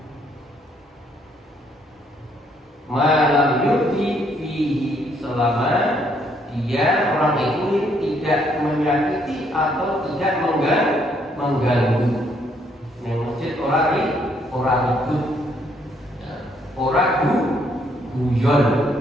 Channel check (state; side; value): normal; both; correlation 0.70